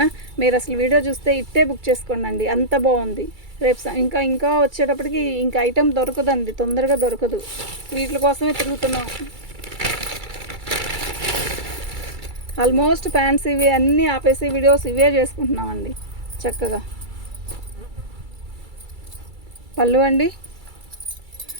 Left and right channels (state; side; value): late; left; 2.3 ms